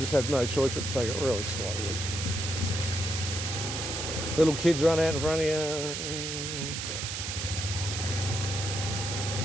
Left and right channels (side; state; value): right; noise; hiss, 4 dB below the sound